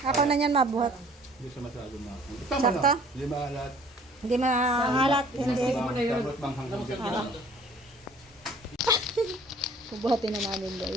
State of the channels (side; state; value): both; normal; correlation 0.53